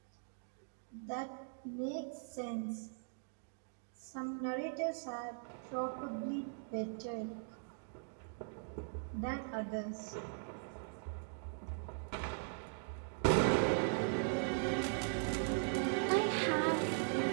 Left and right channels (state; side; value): silent; left; digital silence